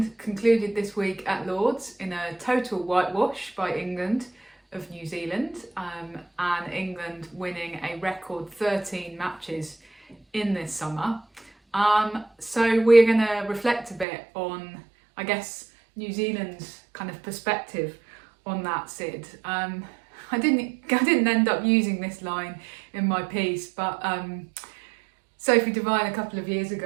concluded this week at Lord's in a total whitewash by England of New Zealand, and England winning a record 13 matches in this summer. So we're going to reflect a bit on, I guess, New Zealand's kind of perspective on that, Sid. I didn't end up using this line in my piece, but Sophie Devine a couple of years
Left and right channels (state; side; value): drops out; left; at 14.1 s